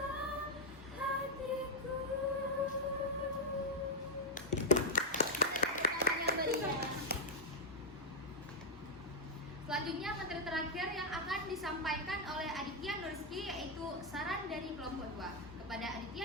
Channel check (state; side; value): normal; both; correlation -0.02